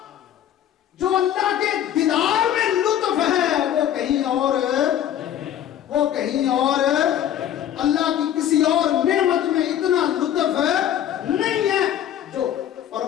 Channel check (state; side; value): quieter; right; 10.7 dB